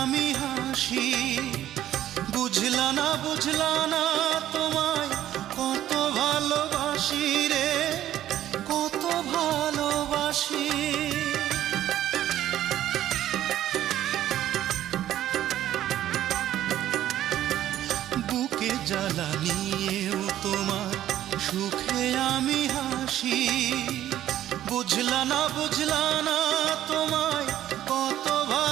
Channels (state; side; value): quieter; left; 12.4 dB